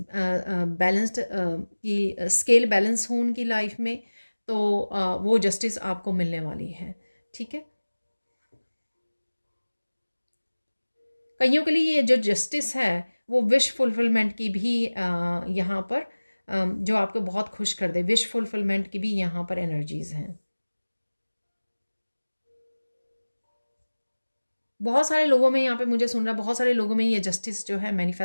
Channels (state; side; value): inverted; both; correlation -1.00